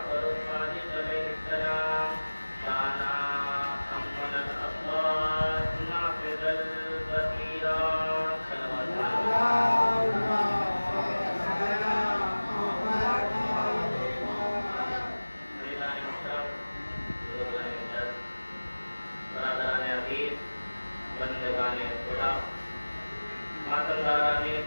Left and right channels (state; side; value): inverted; both; correlation -1.00